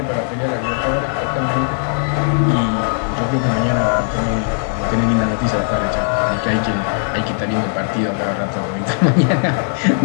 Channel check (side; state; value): right; silent; 67 dB below the other